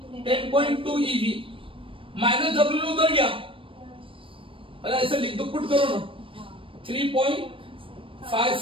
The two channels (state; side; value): late; left; 0.25 ms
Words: 10.2 EV, माइनस W उधर गया, अरे ऐसे लिख दो, पुट करो ना,